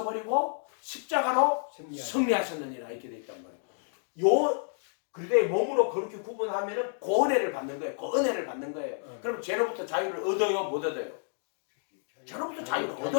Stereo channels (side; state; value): right; silent; digital silence